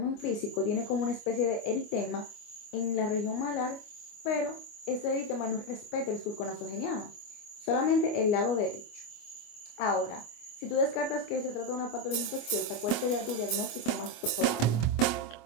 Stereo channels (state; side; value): late; right; 25 ms